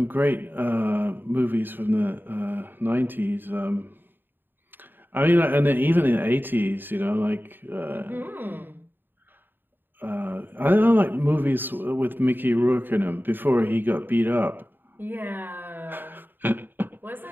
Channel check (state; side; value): late; left; 0.094 ms